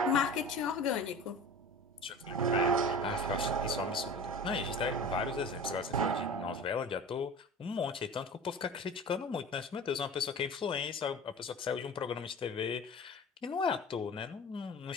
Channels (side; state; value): both; normal; correlation 0.37